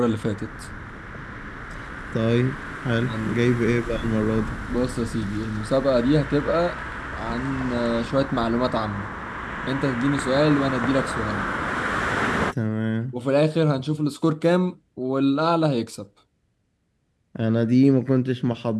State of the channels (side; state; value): both; identical; correlation 1.00